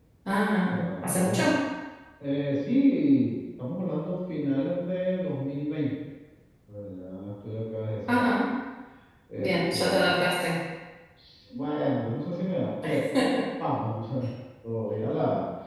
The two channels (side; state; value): both; identical; correlation 1.00